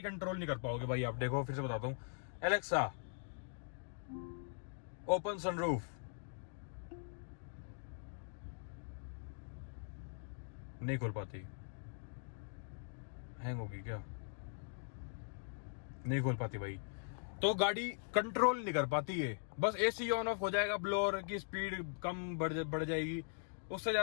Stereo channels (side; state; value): right; silent; digital silence